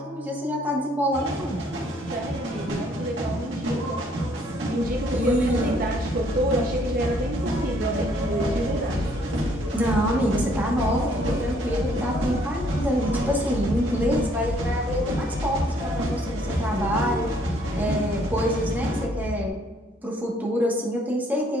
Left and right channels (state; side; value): normal; both; correlation 0.64